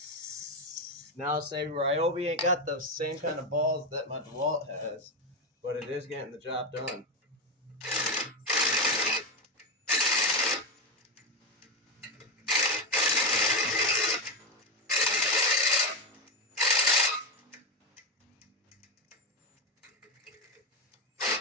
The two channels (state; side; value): normal; both; correlation 0.12